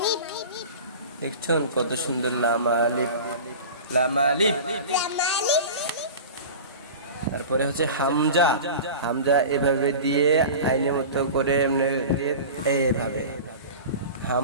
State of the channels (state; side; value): inverted; both; correlation -0.34